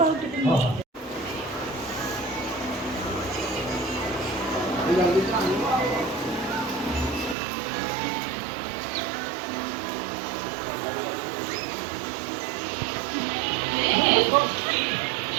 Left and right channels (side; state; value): left; drops out; at 7.4 s